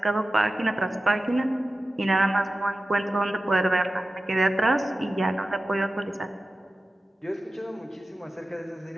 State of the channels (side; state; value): both; normal; correlation 0.95